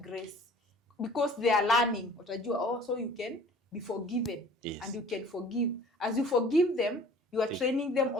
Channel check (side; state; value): both; normal; correlation 0.49